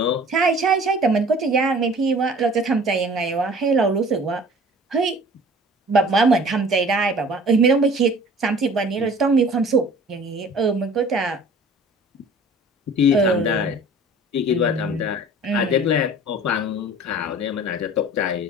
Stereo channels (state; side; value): normal; both; correlation 0.47